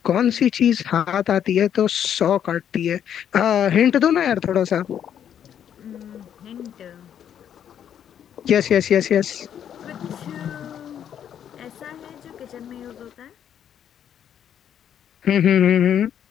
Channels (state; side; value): quieter; right; 9.3 dB